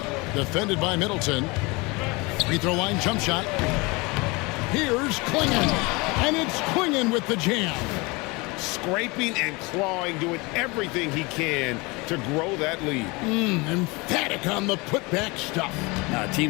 Defended by Middleton. Free throw line jump shot. Here's Klingon. And it's Klingon with the jam. Scraping and clawing, doing everything he can to grow that lead. Emphatic on the putback stuff. Now,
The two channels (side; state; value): right; quieter; 25.9 dB